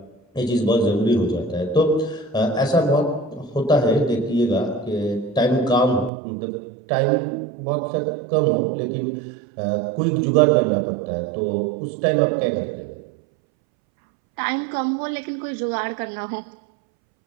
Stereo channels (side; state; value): left; drops out; at 6.1 s